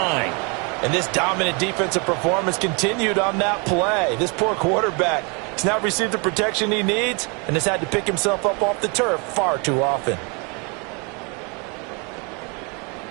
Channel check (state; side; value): quieter; left; 32.7 dB